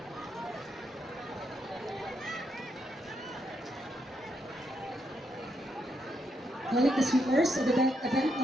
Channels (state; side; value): normal; both; correlation 0.79